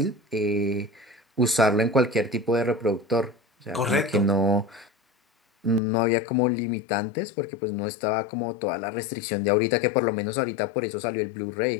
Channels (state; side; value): drops out; right; at 5.8 s